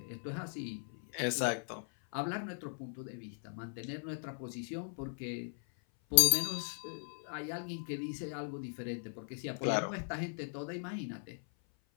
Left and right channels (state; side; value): silent; right; 52 dB below the other